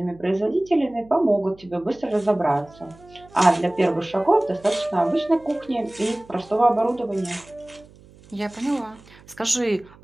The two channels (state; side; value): noise; right; hum, 24 dB below the sound